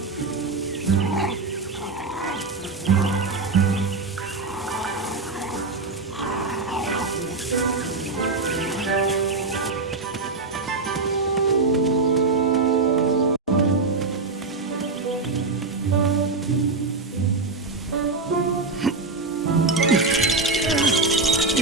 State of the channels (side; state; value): left; quieter; 3.8 dB